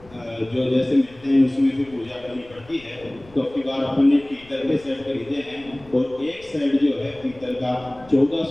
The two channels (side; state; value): left; noise; rumble, 24 dB below the sound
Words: जो जैसे मिलते हैं उसमें फिर पूजा करनी पड़ती है, तो अब की बार अपन ने पीतल के सेट खरीदे हैं और एक सेट जो है पीतल का